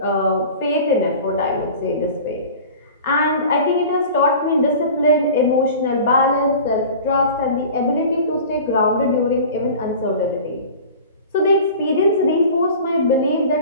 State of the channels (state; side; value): inverted; both; correlation -0.39